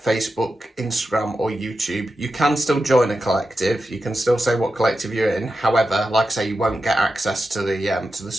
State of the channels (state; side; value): normal; both; correlation 0.90